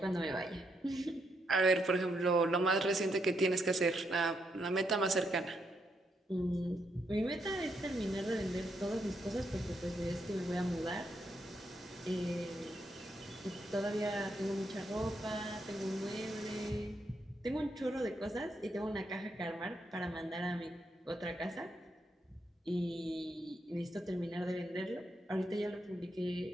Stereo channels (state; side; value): normal; both; correlation 0.79